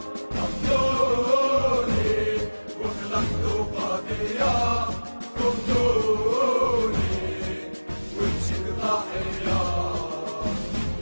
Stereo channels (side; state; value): both; inverted; correlation -1.00